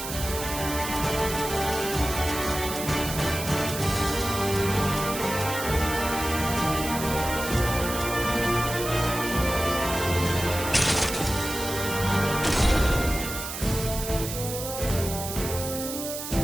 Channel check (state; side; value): noise; right; hiss, 7 dB below the sound